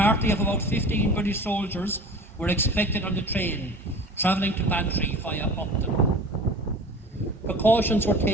of about 15 British soldiers were expected on the train, travelling to Bantry via Upton. Precautions were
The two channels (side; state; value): both; normal; correlation 0.40